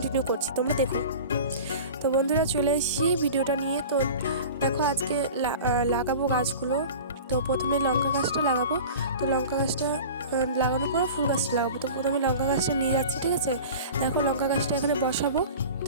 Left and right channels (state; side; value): inverted; both; correlation -0.37